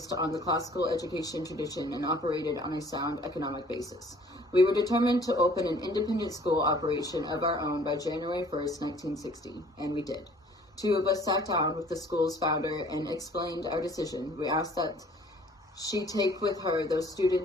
on the classical education tradition and operated on a sound economic basis. We were determined to open an independent school operation of our own by January 1st, 1960, and we did. 2 of us sat down with the school's founder and explained our decision. We asked that she take with her those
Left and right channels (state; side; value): normal; both; correlation 0.54